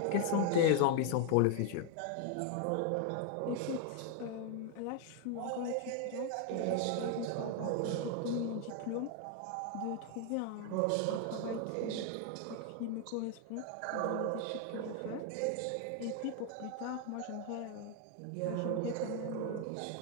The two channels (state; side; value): different; both; correlation 0.00